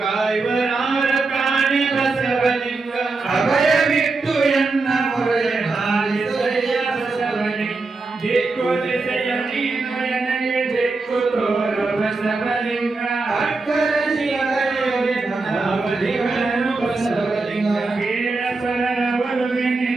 ಕಾಣಿ ಬಸವಲಿಂಗ. ಅಭಯವಿಟ್ಟು ಎನ್ನ ಮೊರೆಯ ಹಾಲಿಸಯ್ಯ ಬಸವಲಿಂಗ. ದಿಕ್ಕು ದಿಸೆಯ ನೀನು ನನಗೆ ದಿಕ್ಕು ತೋರು ಬಸವಲಿಂಗ. ಅಕ್ಕರ ಶಿವಲಿಂಗನು ಬಸವಲಿಂಗ. ಕೀಳ ಪರರ ಒಲುವೆ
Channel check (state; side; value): quieter; left; 3.7 dB